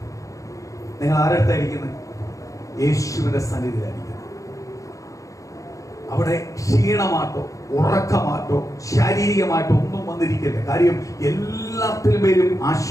നിങ്ങൾ ആരടുത്തായിരിക്കുന്നത്? യേശുവിന്റെ സന്നിധിയിലായിരിക്കുന്നത്. അവിടെ ക്ഷീണമാട്ടോ ഉറക്കമാട്ടോ ശാരീരികമായിട്ടോ ഒന്നും വന്നിരിക്കില്ല. കാര്യം എല്ലാത്തിലും പേരും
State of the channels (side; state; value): right; late; 0.16 ms